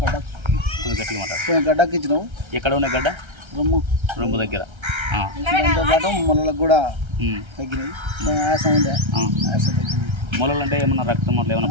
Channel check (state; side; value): late; left; 1.3 ms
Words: కొంచెం గట్టిగా మాట. గడ్డకి ఇచ్చినావు. ఎక్కడ ఉన్న గడ్డ? రొమ్ము దగ్గర. దాంతోపాటు మొలలకు కూడా తగ్గినాయి. ఆయాసం ఉండే, ఆయాసం తగ్గింది. మొలలు అంటే ఏమన్నా రక్తం అట్లా